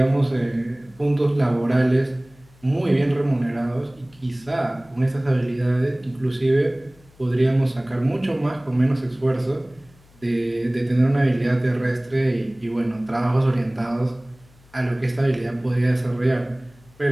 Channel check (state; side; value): noise; left; hum, 28 dB below the sound